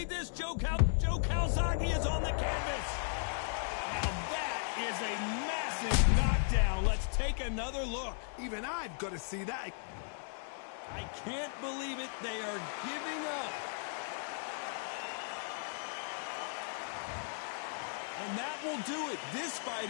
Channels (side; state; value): right; silent; 54 dB below the other